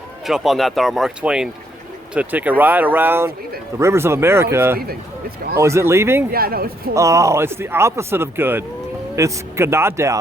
jump on that, our Mark Twain, to take a ride around the rivers of America. No, it's leaving. It's gone. Oh, is it leaving? Yeah, no, it's pulling. Oh, it's the opposite of good. It's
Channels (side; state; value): both; normal; correlation 0.72